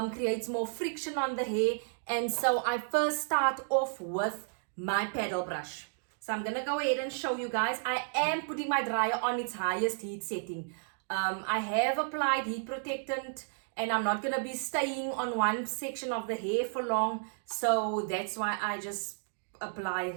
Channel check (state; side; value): silent; left; digital silence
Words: creates more friction on the hair, and so I first start off with my paddle brush. So I'm gonna go ahead and show you guys. I am putting my dryer on its highest heat setting. I have applied heat protectant, and I'm not gonna be staying on one section of the hair for long, so that's why I just apply